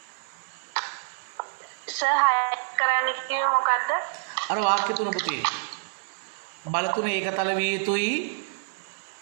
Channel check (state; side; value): silent; left; digital silence